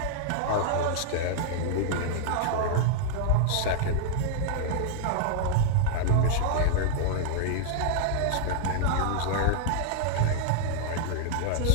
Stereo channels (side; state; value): both; different; correlation -0.01